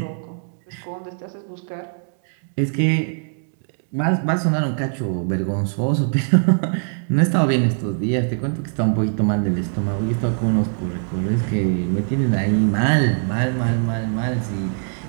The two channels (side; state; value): left; silent; 61 dB below the other